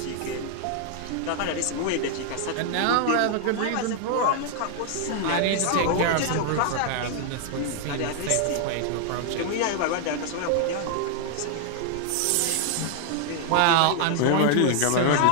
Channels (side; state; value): both; different; correlation 0.00